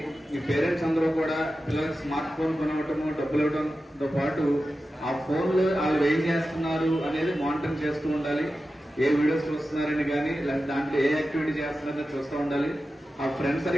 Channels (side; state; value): both; normal; correlation 0.93